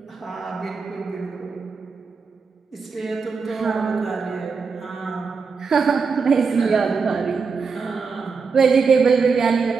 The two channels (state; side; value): quieter; left; 5.1 dB